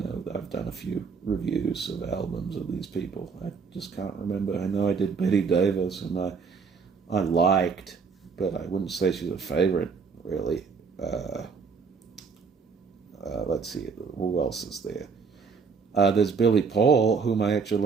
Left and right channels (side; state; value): left; quieter; 5.4 dB